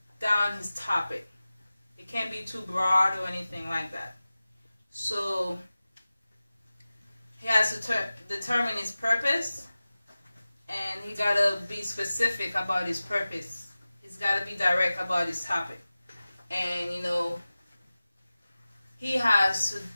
down his topic. It can't be too broad or anything like that. So he has to determine his purpose, and he got to be specific about his purpose. He's got to be direct about his topic. And, you know, he has to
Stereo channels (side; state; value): both; inverted; correlation -0.97